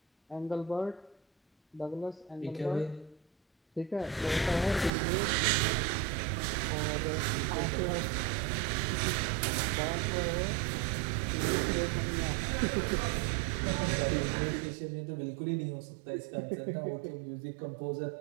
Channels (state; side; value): drops out; left; at 4.9 s